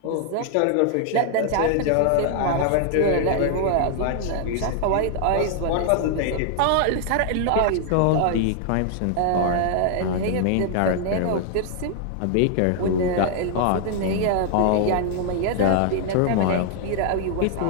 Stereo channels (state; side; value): different; both; correlation 0.00